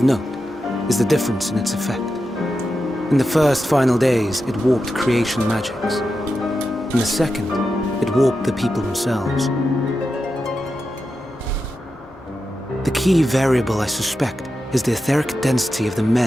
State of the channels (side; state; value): both; normal; correlation 0.89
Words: note is the difference in its effect. In the first final days, it warped creation magics. In the second, it warped the people themselves. The key variable, I suspect, is the etheric density of the